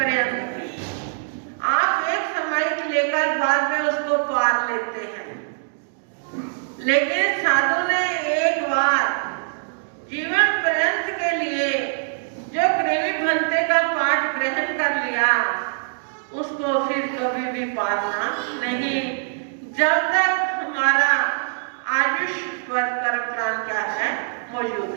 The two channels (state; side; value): silent; left; digital silence